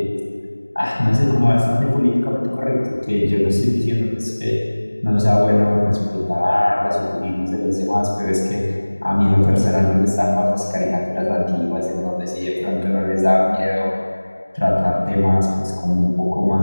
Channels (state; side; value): inverted; both; correlation -1.00